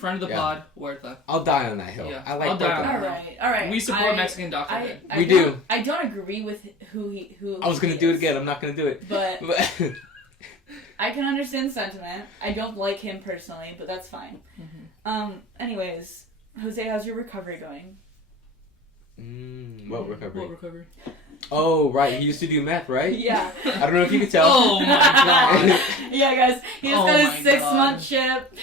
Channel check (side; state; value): both; normal; correlation 0.37